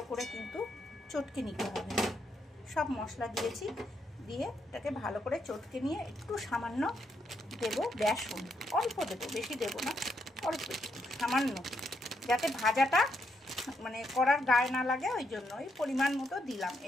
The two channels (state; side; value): normal; both; correlation 0.78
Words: করে কিন্তু চটকে নিতে হবে। সব মশলা দিয়েছি, দিয়ে এটাকে ভালো করে চটকে নিয়ে একটু সামান্য দেবো বেসন, অল্প দেবো, বেশি দেবো না, অল্প সামান্য, যাতে ভাজাটা মানে করার গায়ে না লাগে, ওই জন্য ওই পরিমাণ মতো দিলাম।